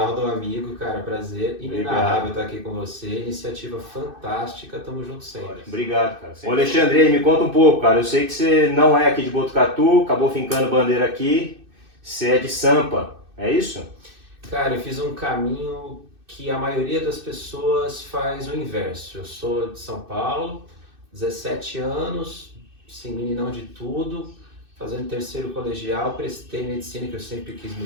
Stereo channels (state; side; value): late; left; 2.6 ms